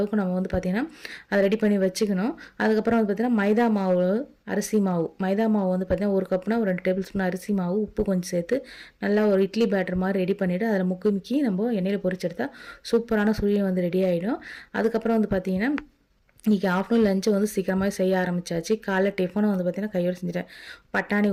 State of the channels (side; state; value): both; identical; correlation 1.00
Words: நம்ம வந்து பார்த்திங்கன்னா அதை ரெடி பண்ணி வச்சுக்கணும். அதுக்கப்புறம் வந்து பார்த்திங்கன்னா மைதா மாவு, அரிசி மாவு, மைதா மாவு வந்து பார்த்திங்கன்னா 1 கப்னா ஒரு 2 டேபிள் ஸ்பூன் அரிசி மாவு, உப்பு கொஞ்சம் சேர்த்து நல்லா ஒரு இட்லி பேட்டர் மாதிரி ரெடி பண்ணிவிட்டு அதில் முக்கி நம்ம எண்ணெயில் பொரிச்செடுத்தால் சூப்பரான சுழியம் வந்து ரெடி ஆகிடும். அதுக்கப்புறம் வந்து பார்த்திங்கன்னா இன்றைக்கி ஆஃப்டர்நூன் லஞ்சு வந்து சீக்கிரமாக செய்ய ஆரம்பித்தாச்சு. காலைல டிஃபனை வந்து பார்த்திங்கன்னா கையோடு செஞ்சுட்டேன். பட்டாணி